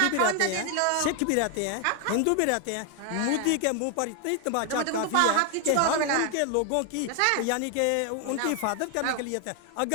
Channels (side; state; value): both; different; correlation 0.01